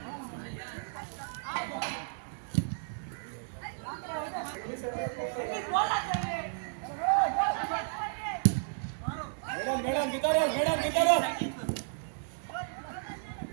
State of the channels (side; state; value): left; silent; 56 dB below the other